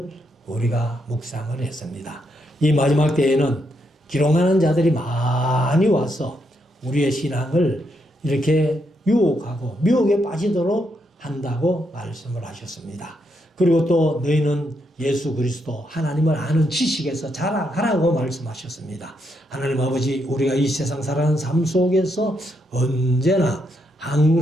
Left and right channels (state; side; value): normal; both; correlation 0.79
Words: 우리가 묵상을 했습니다. 이 마지막 때에는 기롱하는 자들이 많이 와서 우리의 신앙을 이렇게 유혹하고 미혹에 빠지도록 한다고 말씀을 하셨습니다. 그리고 또 너희는 예수 그리스도 하나님을 아는 지식에서 자라가라고 말씀하셨습니다. 하나님 아버지, 우리가 이 세상 살아가는 삶 속에서 언제나